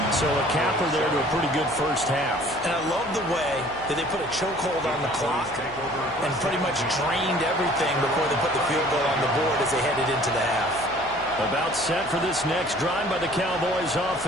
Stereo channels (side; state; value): left; noise; hum, 21 dB below the sound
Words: So a capper there to a pretty good 1st half. And I love the way that they put a chokehold on the clock and pretty much drained everything before they put the field goal on the board as they headed into the half. About set for this next drive by the Cowboys